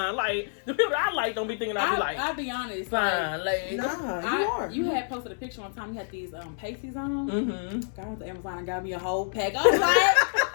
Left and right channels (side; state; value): right; silent; digital silence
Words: Like, the people I like don't be thinking I'll be like, I'll be honest. fine, like, nah, you are. You had posted a picture one time. You had these pasties on. Mm-hmm. I went to Amazon and got me a whole pack. I was like,